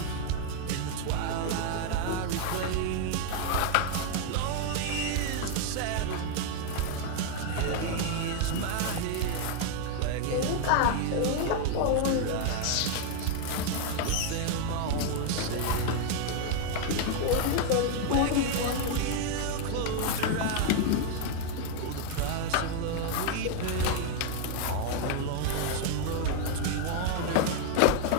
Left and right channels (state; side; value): different; both; correlation 0.00